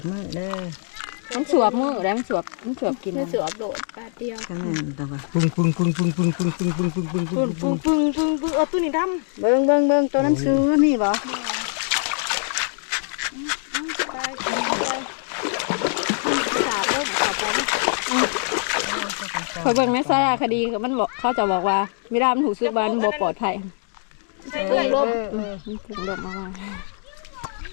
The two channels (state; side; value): silent; right; 59 dB below the other